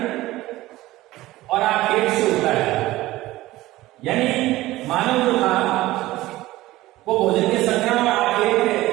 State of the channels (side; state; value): left; quieter; 17.3 dB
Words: और आखेट से होता है। यानी मानव जो था वो भोजन के संग्रहण और